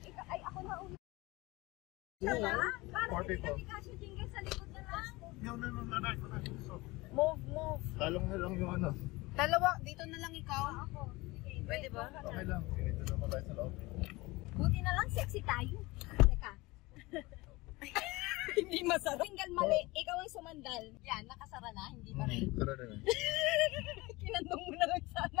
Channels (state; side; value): quieter; right; 22.0 dB